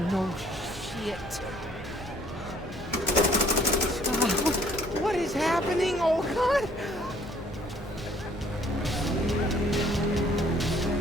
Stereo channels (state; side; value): normal; both; correlation 0.60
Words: No. Shit. What is happening? Oh, God.